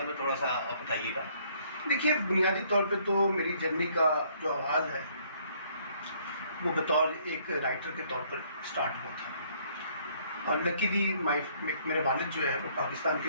میں تھوڑا سا آپ بتائیے گا. دیکھیے، بنیادی طور پہ تو میری جرنی کا جو آغاز ہے وہ بطور ایک رائٹر کے طور پر سٹارٹ ہوا تھا. اور لکیلی میرے والد جو ہے وہ پاکستان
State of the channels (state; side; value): inverted; both; correlation -0.64